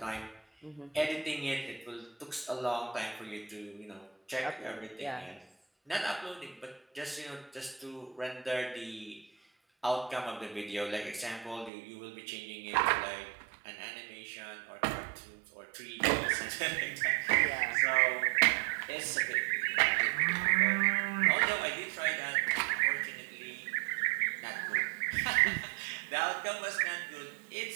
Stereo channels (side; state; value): left; drops out; at 11.7 s